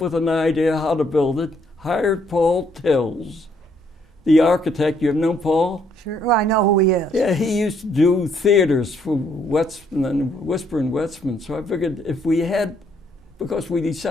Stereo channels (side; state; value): both; normal; correlation 0.69